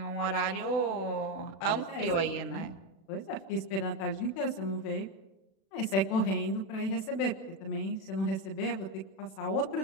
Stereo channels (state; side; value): late; right; 36 ms